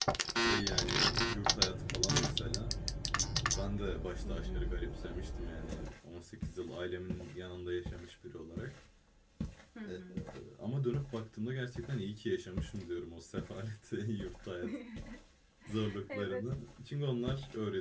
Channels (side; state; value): both; identical; correlation 1.00